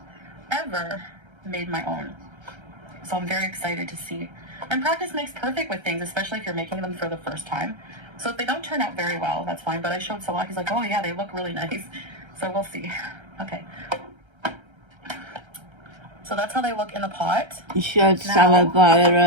ever made my own. So I'm very excited to see. And practice makes perfect with things, especially if you're making them for the first time. So if they don't turn out very well, that's fine. But I showed Salah, he's like, oh yeah, they look really nice. So we'll see. Okay. So that's how they look in the pot. You showed Salah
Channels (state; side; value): late; left; 1.3 ms